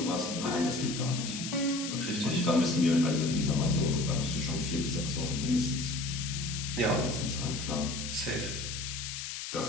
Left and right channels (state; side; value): noise; left; hiss, 6 dB below the sound